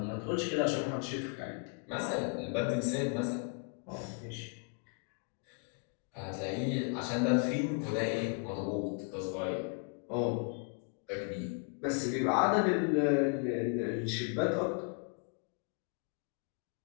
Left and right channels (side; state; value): right; quieter; 38.4 dB